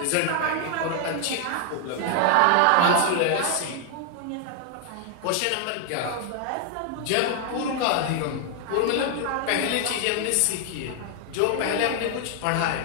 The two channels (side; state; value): both; different; correlation 0.00